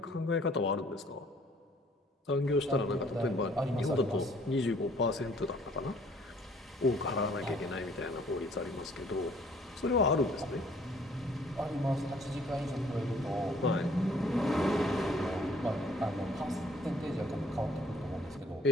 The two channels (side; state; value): both; normal; correlation 0.59